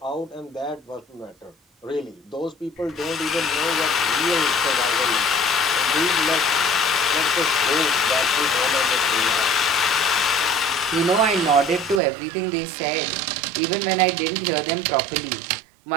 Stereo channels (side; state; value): left; drops out; at 12.0 s